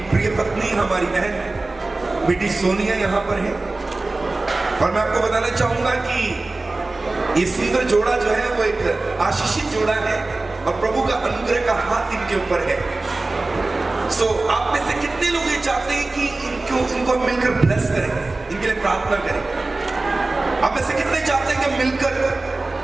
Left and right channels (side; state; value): left; quieter; 3.2 dB